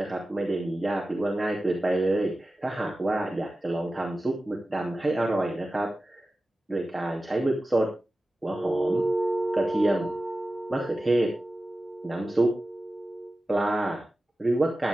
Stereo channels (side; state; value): both; normal; correlation 0.95